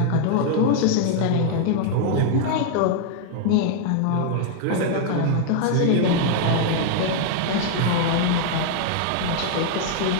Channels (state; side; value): different; both; correlation 0.00